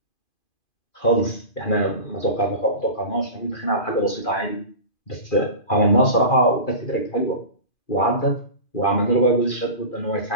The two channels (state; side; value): late; right; 2.5 ms